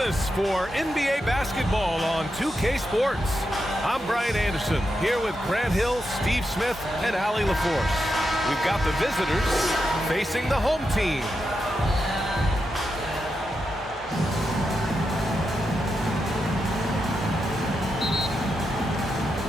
for NBA basketball on 2K Sports. I'm Brian Anderson, here with Grant Hill, Steve Smith, and Allie LaForce. We've got the visitors facing the home team.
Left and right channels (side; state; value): both; normal; correlation 0.86